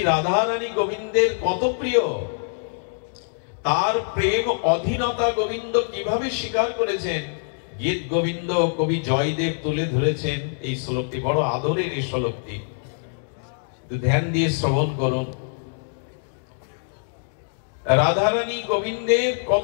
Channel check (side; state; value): right; silent; digital silence